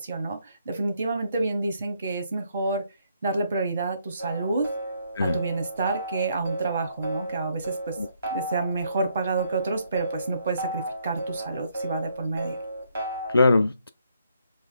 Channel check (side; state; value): both; inverted; correlation -0.72